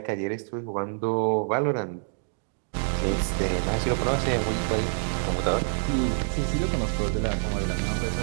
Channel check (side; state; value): left; silent; 56 dB below the other